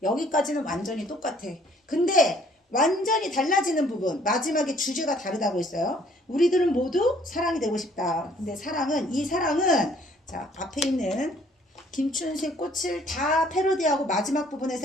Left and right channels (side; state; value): both; normal; correlation 0.60